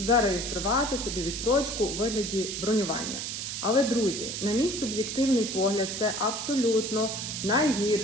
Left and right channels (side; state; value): right; noise; hiss, 5 dB below the sound